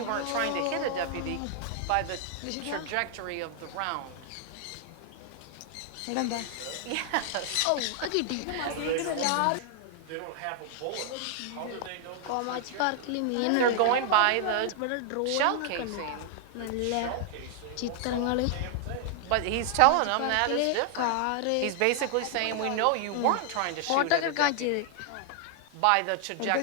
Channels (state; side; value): different; both; correlation 0.00